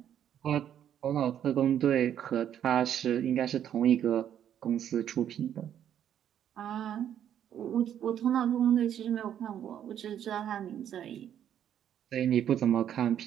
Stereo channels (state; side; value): quieter; left; 9.9 dB